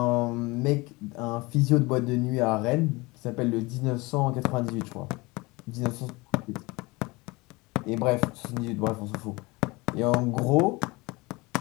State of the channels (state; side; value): quieter; right; 23.9 dB